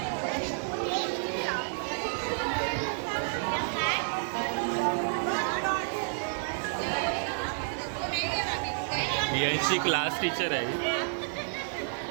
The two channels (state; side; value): silent; left; digital silence